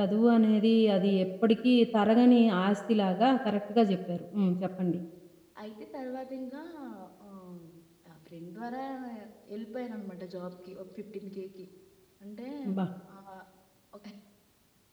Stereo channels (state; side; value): identical; both; correlation 1.00